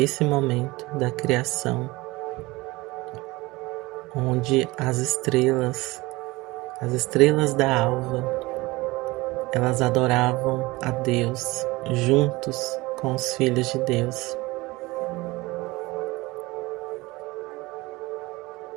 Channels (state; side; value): quieter; left; 21.6 dB